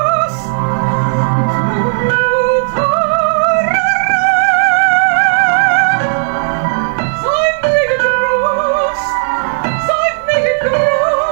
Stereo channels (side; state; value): left; silent; digital silence